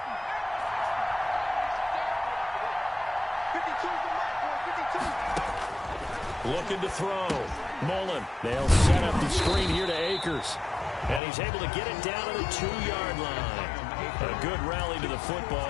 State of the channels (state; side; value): drops out; right; at 11.2 s